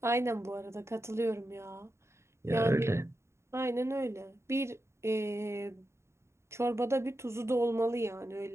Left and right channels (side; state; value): left; late; 0.13 ms